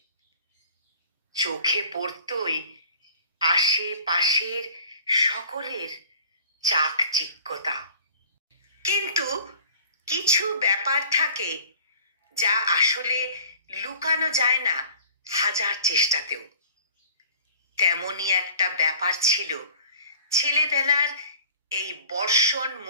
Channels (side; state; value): both; inverted; correlation -0.48